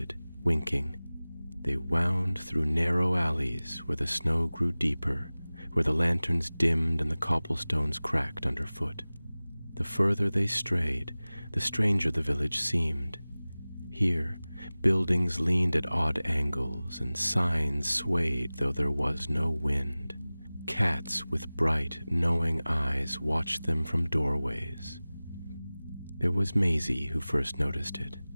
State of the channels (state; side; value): inverted; both; correlation -0.99